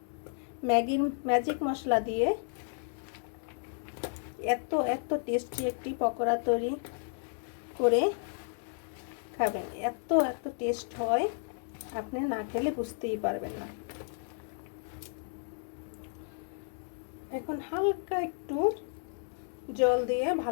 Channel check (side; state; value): right; silent; 56 dB below the other